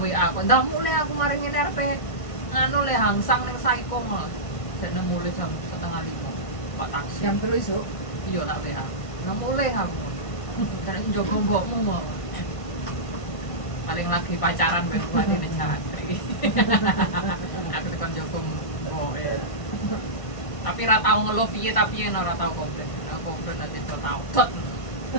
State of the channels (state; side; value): late; right; 1.5 ms